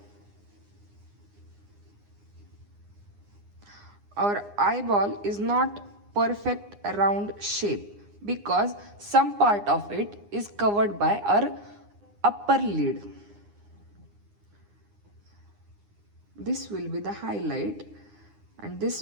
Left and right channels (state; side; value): late; left; 9.8 ms